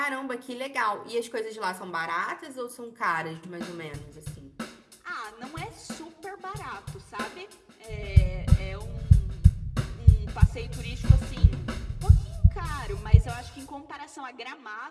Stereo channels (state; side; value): identical; both; correlation 1.00